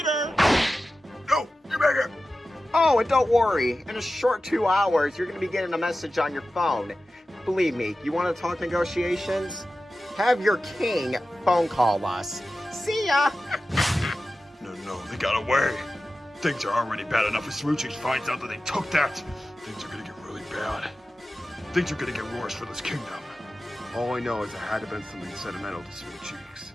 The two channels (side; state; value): both; normal; correlation 0.94